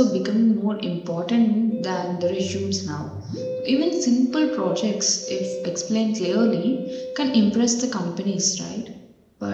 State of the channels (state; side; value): identical; both; correlation 1.00